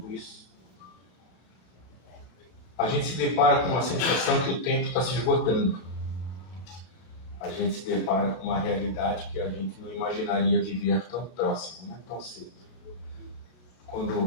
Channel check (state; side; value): late; right; 33 ms